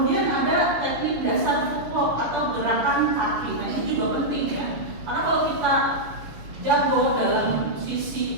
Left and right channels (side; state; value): left; late; 6.5 ms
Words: ada teknik dasar footwork atau gerakan kaki. Nah, ini juga penting ya. Karena kalau kita jago dalam